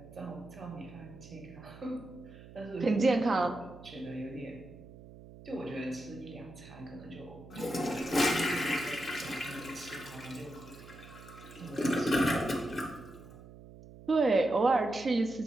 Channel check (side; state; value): right; noise; hum, 17 dB below the sound